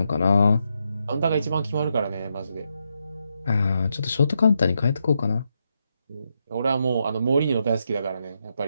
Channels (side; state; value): both; inverted; correlation -0.82